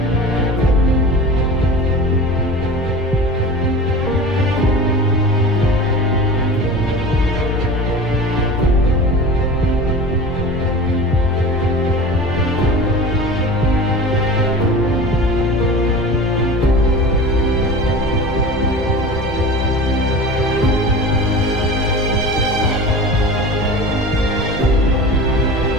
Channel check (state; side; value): normal; both; correlation 0.35